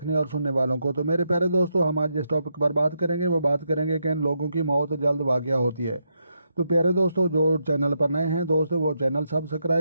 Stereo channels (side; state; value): both; inverted; correlation -0.81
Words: और सुनने वालों को। तो मेरे प्यारे दोस्तों, हम आज जिस टॉपिक पर बात करेंगे वो बात करेंगे कि इन लोगों की मौत जल्द वाक़या होती है। तो प्यारे दोस्तों, जो चैनल पर नए हैं दोस्तों वो चैनल